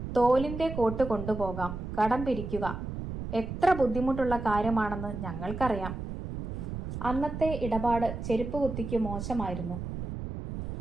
തോലിന്റെ കോട്ട് കൊണ്ടുപോകാം, കടം പിരിക്കുക എത്ര ബുദ്ധിമുട്ടുള്ള കാര്യമാണെന്ന് ഞങ്ങൾക്കറിയാം. അന്നത്തെ ഇടപാട് ചെരുപ്പ് കുത്തിക്ക് മോശമായിരുന്നു.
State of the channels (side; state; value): right; noise; rumble, 6 dB below the sound